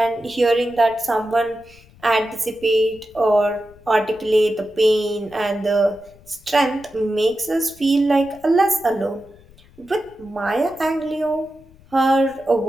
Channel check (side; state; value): left; noise; rumble, 26 dB below the sound